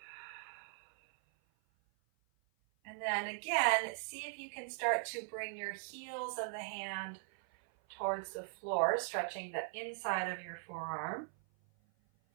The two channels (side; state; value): left; silent; 51 dB below the other